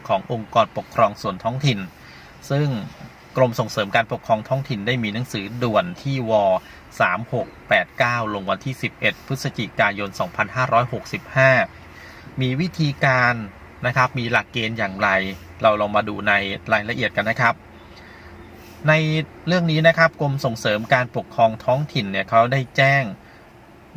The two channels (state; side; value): identical; both; correlation 1.00